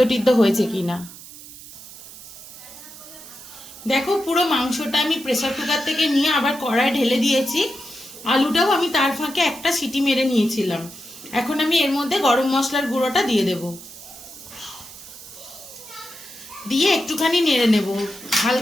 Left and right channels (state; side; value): noise; right; hiss, 16 dB below the sound